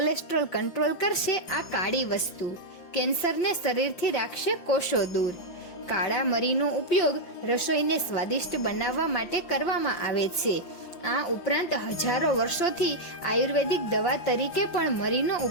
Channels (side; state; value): right; late; 5.7 ms